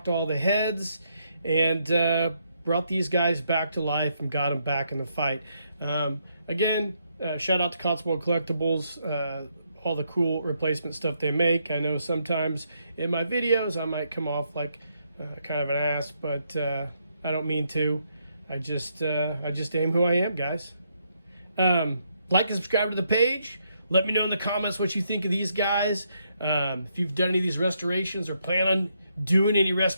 all the heads, and brought these guys back to life and got them back in the fight. Again, shout out to Cotswolds Collectibles, all the cool replacement stuff they make. I know sometimes in my videos I might come off like kind of an ass, but I don't mean to. I just am who I am, guys. Like and subscribe to the page. Let me know in the comments what you think of these guys. If you've done any of these restorations or plan on doing any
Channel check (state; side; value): inverted; both; correlation -0.76